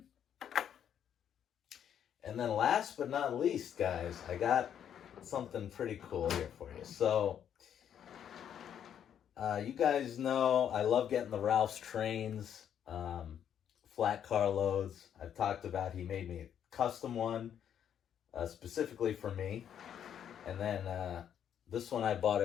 And then last but not least, guys, I got something pretty cool here for you. So, you guys know I love getting the Ralph's trains, flat car loads. I've talked about he made me a custom one, specifically for me. And then this one I bought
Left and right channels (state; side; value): quieter; right; 9.2 dB